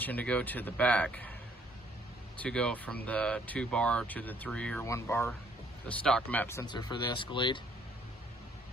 to go to the back, to go from the 2 bar to the 3 or 1 bar, the stock map sensor for the Escalade.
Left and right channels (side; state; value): both; normal; correlation 0.64